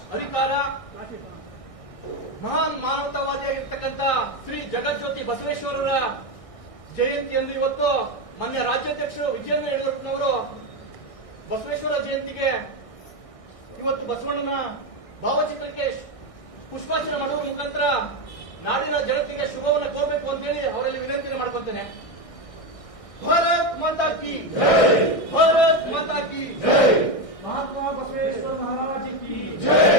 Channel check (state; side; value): late; right; 1.6 ms